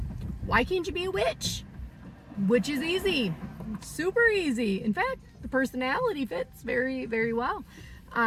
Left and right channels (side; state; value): both; identical; correlation 1.00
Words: why can't you be a witch? Which is easy. Super easy. In fact, the personality fits very, very well.